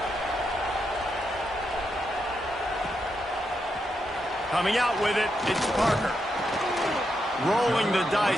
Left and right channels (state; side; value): normal; both; correlation 0.83